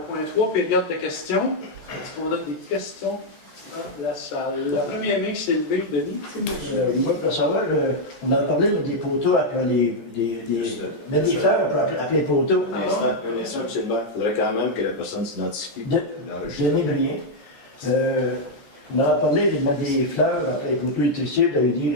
point 3, période de questions. Est-ce qu'on a des questions dans la salle? La première main qui s'est levée, Denis. Moi, pour savoir, on a parlé des poteaux après mettre des fleurs après les poteaux. Un instant, M. le maire. Il faudrait quand même que la personne s'identifie. Denis Brien. On a parlé de mettre des fleurs après les poteaux électricités. Vous avez dit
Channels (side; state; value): right; late; 13 ms